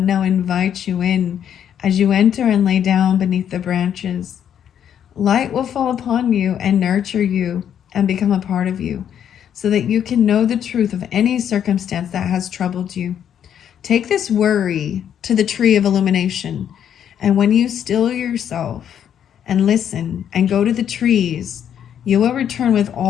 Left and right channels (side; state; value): right; quieter; 9.3 dB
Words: now invites you in as you enter and lay down beneath the branches. Light will fall upon you and nurture you and become a part of you, so that you can know the truth of any circumstance that has troubled you. Take this worry to the tree of illumination, and when you still yourself and listen and go to the trees, you will return with